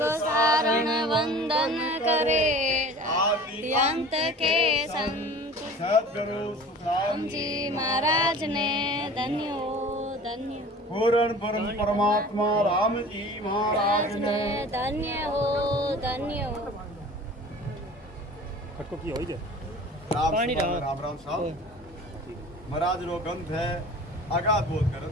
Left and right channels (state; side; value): normal; both; correlation 0.42